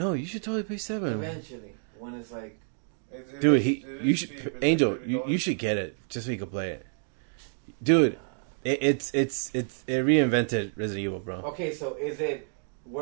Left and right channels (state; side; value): silent; left; 56 dB below the other